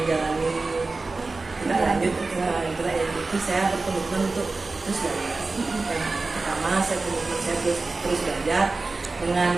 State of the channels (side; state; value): left; quieter; 3.6 dB